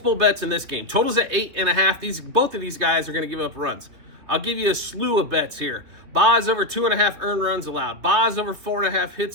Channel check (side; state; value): left; late; 3.2 ms